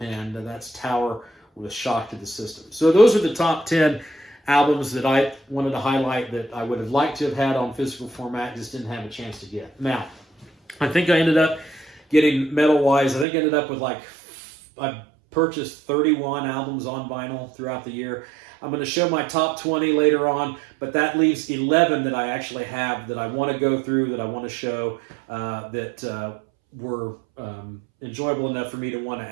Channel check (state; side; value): drops out; left; at 13.2 s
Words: that's Tower with Shock to the System. So those are the top 10 albums that I wanted to highlight that I would have liked to have had on physical format, just didn't have a chance to get. Now, I think I ended up getting metal-wise, I think I ended up with I purchased 31 albums on vinyl throughout the year. I'm going to show my top 20 later on, but that leaves 11 that I actually have that I want to go through, that I want to show, that were enjoyable enough for me to want to